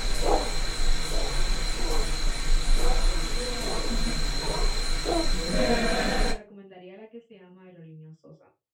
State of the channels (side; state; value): both; identical; correlation 1.00